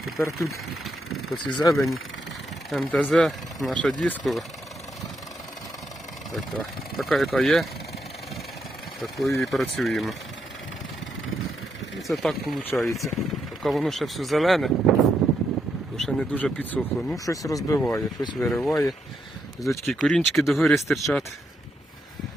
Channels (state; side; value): normal; both; correlation 0.79